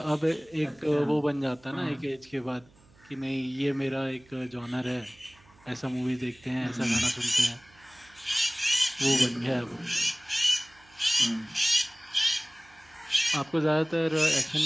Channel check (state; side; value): noise; right; hum, 28 dB below the sound